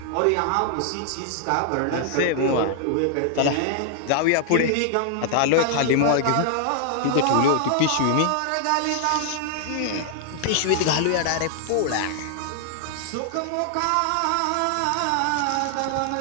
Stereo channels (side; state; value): both; different; correlation 0.00